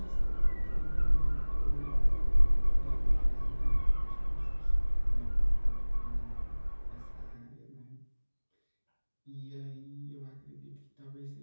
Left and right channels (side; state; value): both; inverted; correlation -1.00